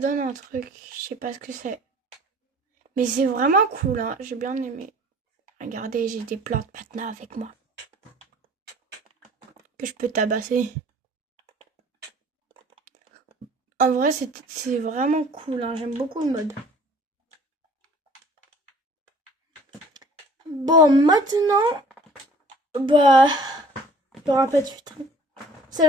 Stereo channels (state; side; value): normal; both; correlation 0.51